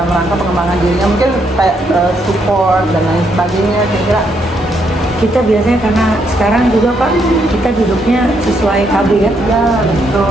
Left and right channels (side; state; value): both; normal; correlation 0.75